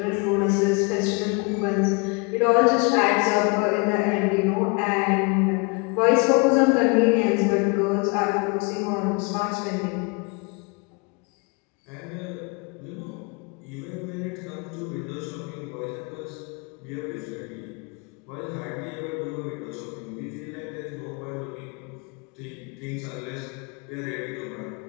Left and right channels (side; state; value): right; quieter; 30.8 dB